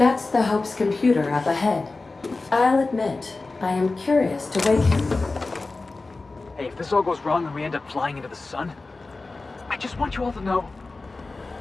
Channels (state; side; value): quieter; right; 3.5 dB